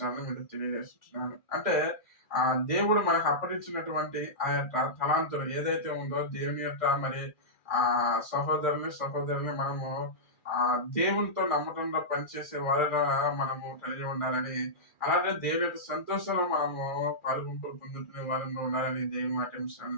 మీరు తెలియజేస్తున్నాను. అంటే దేవుడు మనకు అప్పగించినటువంటి ఆ యొక్క తలాంతులు ఏదైతే ఉందో దేవుని యొక్క మరి సహోదరుని మనము దేవునితో నమ్మకంగా పనిచేసే వారిగా మనము కలిగి ఉండాలని, అలాగే దేవుని యొక్క సంతోషంలో మనము పొందుకునే వారిలో ఉండాలని దేవుని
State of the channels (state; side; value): late; right; 2.4 ms